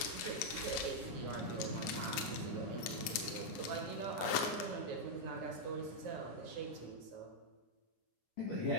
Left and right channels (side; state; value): right; late; 9.8 ms